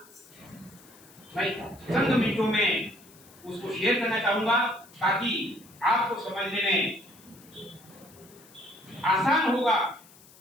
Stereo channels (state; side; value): noise; left; hiss, 24 dB below the sound